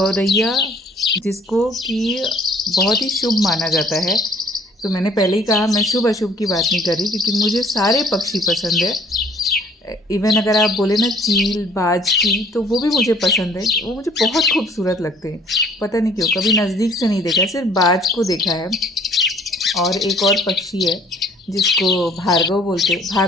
जिसको कि बहुत ही शुभ माना जाता है, तो मैंने पहले ही कहा मैं शुभ अशुभ की बात नहीं कर रही, क्योंकि मुझे सारे पक्षी पसंद है। इवन अगर आप बोले ना चील बाज की, तो वो भी मुझे पसंद है। वो मुझे बहुत खूबसूरत लगते हैं, पता नहीं क्यों। कभी नज़दीक से नहीं देखा, सिर्फ बाज को देखा है। और एक और पक्षी है जिसको भार्गव बोलते,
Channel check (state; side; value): normal; both; correlation 0.57